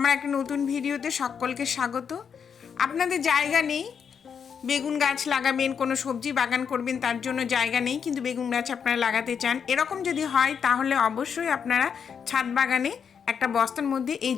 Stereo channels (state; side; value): quieter; right; 7.0 dB